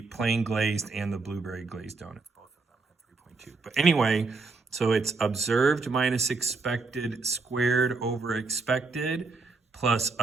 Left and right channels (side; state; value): left; quieter; 4.0 dB